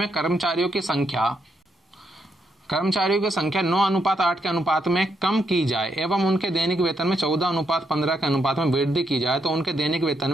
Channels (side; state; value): both; normal; correlation 0.78